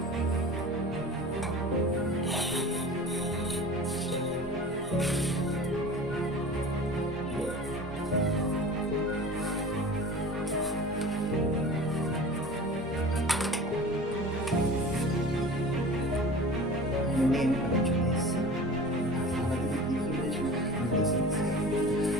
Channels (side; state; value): both; normal; correlation 0.38